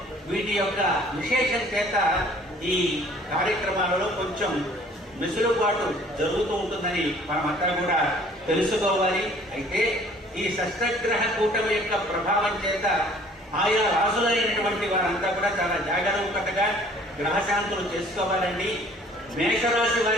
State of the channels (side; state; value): both; normal; correlation 0.54